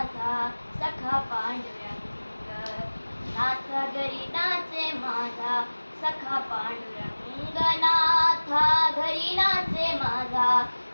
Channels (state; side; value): inverted; both; correlation -1.00